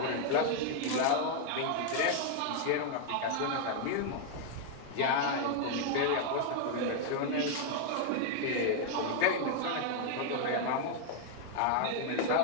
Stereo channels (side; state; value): both; different; correlation 0.00